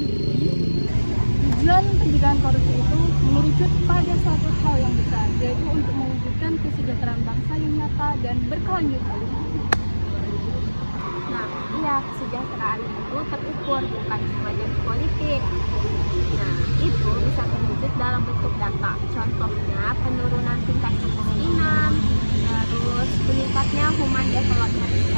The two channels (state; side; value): inverted; both; correlation -1.00